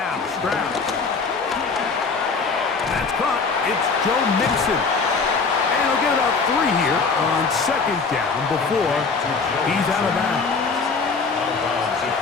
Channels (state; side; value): quieter; right; 4.7 dB